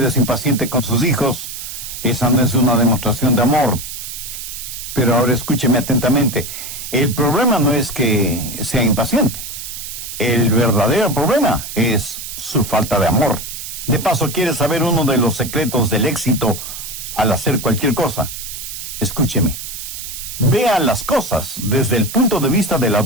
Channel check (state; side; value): noise; right; hiss, 9 dB below the sound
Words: es impaciente con sus hijos, esa no es una demostración de amor. Pero ahora escúcheme atentamente. El problema no es que sea impaciente. El verdadero problema es su falta de amor. De paso, ¿quiere saber uno de los secretos del éxito al hacer cualquier cosa? Escúcheme. Vea las cosas desde el punto de vista de la